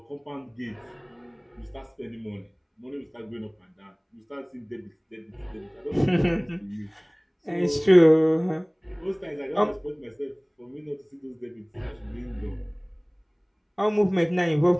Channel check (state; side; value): identical; both; correlation 1.00